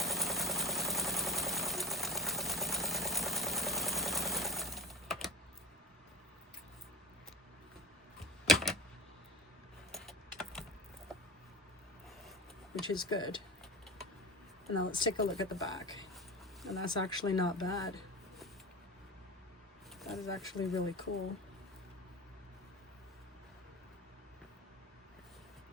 Which is good. And now let's take a look at the back. And that's actually not bad. That is actually really cool.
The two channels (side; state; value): both; normal; correlation 0.33